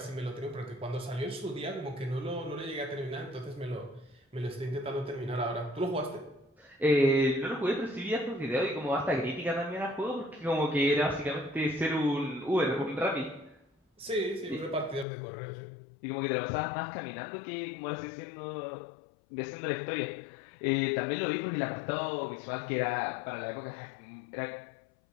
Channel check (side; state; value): right; drops out; at 15.1 s